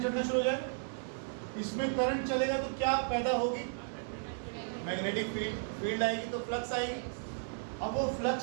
चलना शुरू हो जाएगा। इसमें करंट चलेगा तो क्या पैदा होगी? मैग्नेटिक फील्ड आएगी, तो फ्लक्स आएगी। अब वो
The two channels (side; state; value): left; silent; digital silence